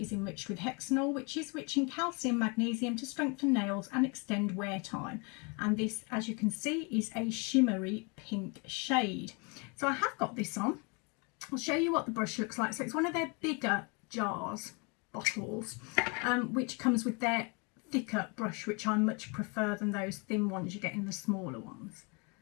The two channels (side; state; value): right; quieter; 31.5 dB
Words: enriched with hexanol, which is rich in calcium magnesium to strengthen nails and extend wear time. And this, as you can see, is a shimmery pink shade. So I have got this on. I'll show you what the brush looks like. So it's one of their bigger jars, bottles, which comes with their thicker brush, which I much prefer than those thin ones you get in the smaller ones.